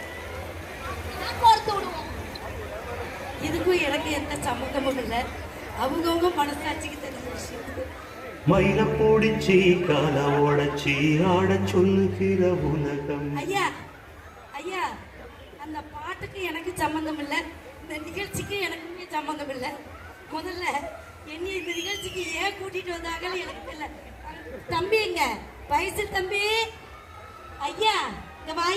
கோர்த்து விடுவோம். இதுக்கும் எனக்கு எந்த சம்மந்தமும் இல்லை. அவங்கவுங்க மனசாட்சிக்கு தெரிஞ்ச விஷயம். மயில போடிச்சி கால உடச்சி ஆட சொல்லுகிற உலகம். ஐயா ஐயா, அந்த பாட்டுக்கு எனக்கு சம்மந்தம் இல்லை, இந்த நிகழ்ச்சிக்கு எனக்குமே சம்மந்தம் இல்லை. முதல்ல என்னை இந்த நிகழ்ச்சிக்கு ஏன் கூட்டிட்டு வந்தாங்கன்னு எனக்கு தெரியல. தம்பி எங்க வயசு தம்பி? ஐயா இங்க வா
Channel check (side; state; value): both; identical; correlation 1.00